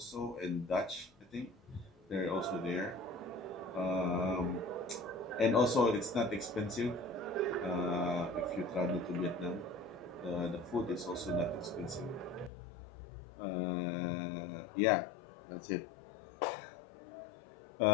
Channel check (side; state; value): right; drops out; at 12.5 s